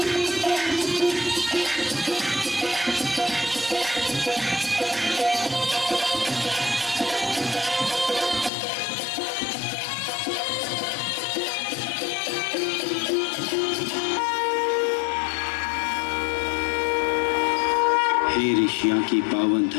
हे ऋषियों की पावन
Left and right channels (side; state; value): right; drops out; at 8.5 s